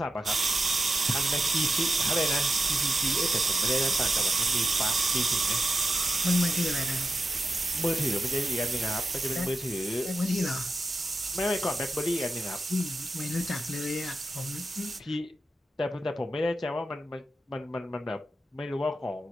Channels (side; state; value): both; normal; correlation 0.90